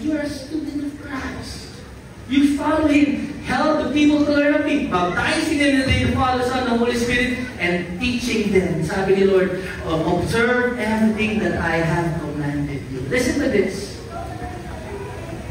you are a student of Christ, you follow Him, help the people to learn of me, baptizing them in the name of the Father, Son, and the Holy Spirit, and teaching them. Sabi ni Lord, observe everything that I have commanded you. Listen to this.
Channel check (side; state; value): both; identical; correlation 1.00